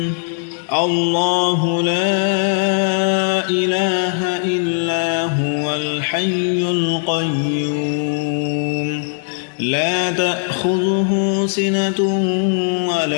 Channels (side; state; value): right; silent; digital silence